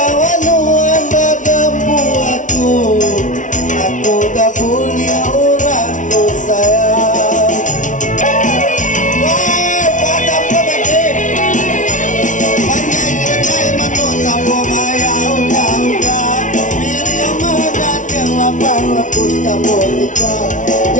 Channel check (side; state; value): right; late; 0.37 ms